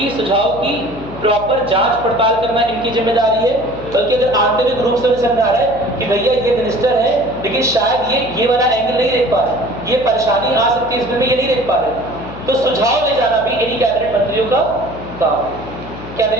सुझाव की प्रॉपर जांच पड़ताल करना इनकी जिम्मेदारी है, बल्कि अगर आंतरिक रूप से समझा रहा है कि भैया ये मिनिस्टर है लेकिन शायद ये वाला एंगल नहीं देख पा रहे, ये परेशानी आ सकती है इसमें, ये नहीं देख पा रहे, तो सुझाव ले जाना भी इन्हीं कैबिनेट मंत्रियों का काम। क्या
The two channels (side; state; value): left; noise; hum, 14 dB below the sound